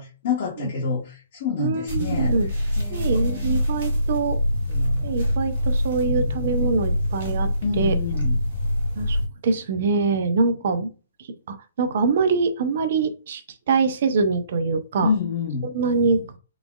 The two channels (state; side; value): inverted; both; correlation -0.64